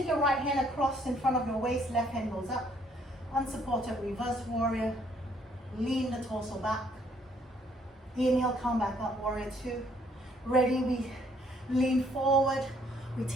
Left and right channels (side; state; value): both; normal; correlation 0.65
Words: your right hand across in front of your waist, left hand goes up, unsupported reverse warrior, lean the torso back. Inhale, come back up, warrior 2. Ready, we lean forward. We